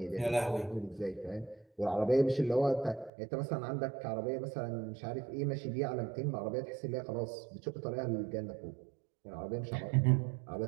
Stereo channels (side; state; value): left; drops out; at 3.1 s